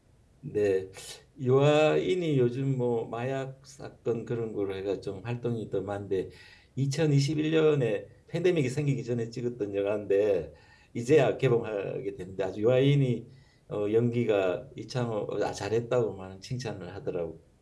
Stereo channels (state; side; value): identical; both; correlation 1.00